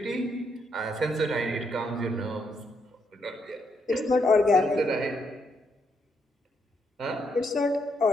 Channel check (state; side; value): normal; both; correlation 0.76